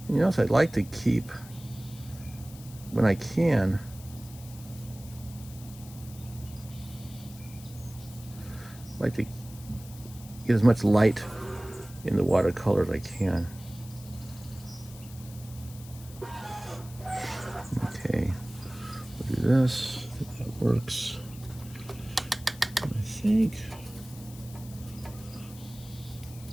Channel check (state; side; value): noise; left; hiss, 19 dB below the sound